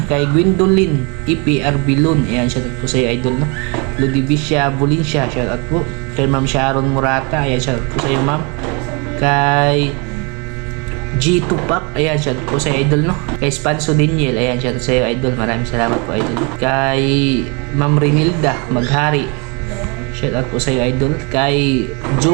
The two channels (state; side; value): quieter; left; 31.6 dB